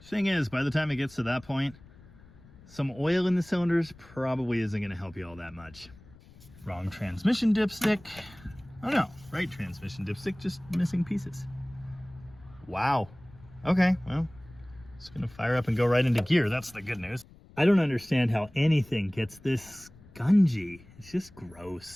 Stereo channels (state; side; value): noise; left; rumble, 23 dB below the sound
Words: Thing is, by the time it gets to that point, some oil in the cylinders probably isn't going to help you all that much. Wrong transmission dipstick. Oh no, right transmission dipstick, just missing pieces. Wow. Okay, well, it's going to fire up and go right into gear. That's the good news. I don't understand how anything gets this spongy. It's just